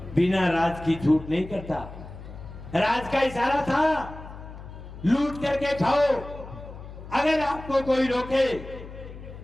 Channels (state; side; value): noise; left; hum, 14 dB below the sound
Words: बिना राज की छूट नहीं करता, राज का इशारा था लूट करके खाओ। अगर आपको कोई रोके